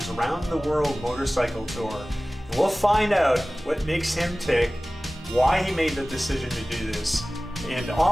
round-the-world motorcycle tour. And we'll find out what makes him tick, why he made the decision to do this, and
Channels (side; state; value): both; normal; correlation 0.98